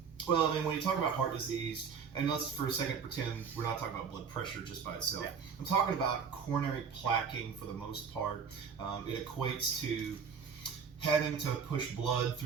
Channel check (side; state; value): left; quieter; 6.4 dB